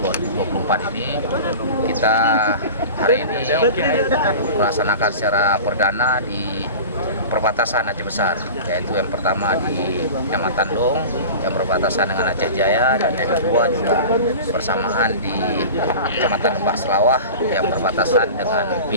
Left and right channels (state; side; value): inverted; both; correlation -0.34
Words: ini, kita hari ini melaksanakan secara perdana di perbatasan Aceh Besar, yaitu yang pertama di Kecamatan Dong yang berbatasan dengan Aceh Jaya, dan yang kedua juga bersamaan di Kecamatan Lembah Selawah yang berbatasan dengan